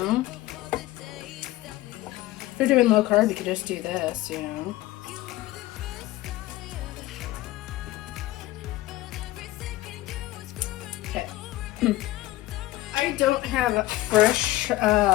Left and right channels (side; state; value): right; quieter; 16.9 dB